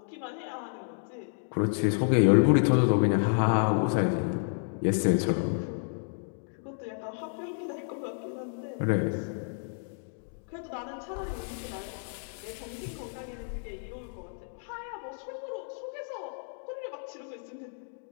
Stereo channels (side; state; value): right; silent; digital silence